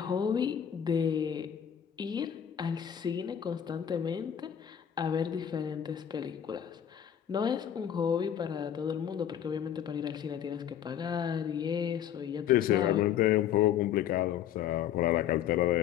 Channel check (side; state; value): right; quieter; 9.6 dB